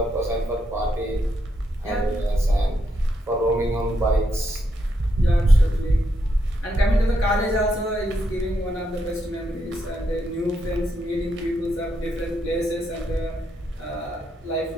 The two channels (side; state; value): both; normal; correlation 0.80